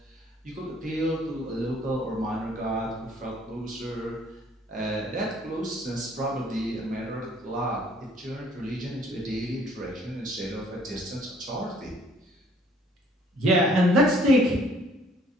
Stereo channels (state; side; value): normal; both; correlation 0.59